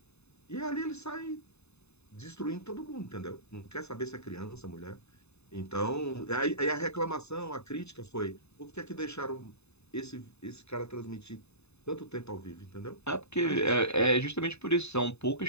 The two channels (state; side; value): late; right; 0.80 ms